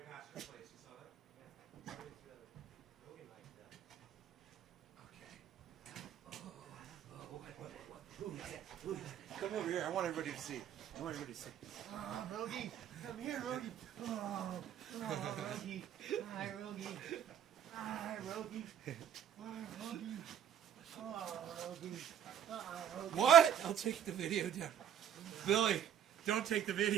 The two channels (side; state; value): left; quieter; 9.2 dB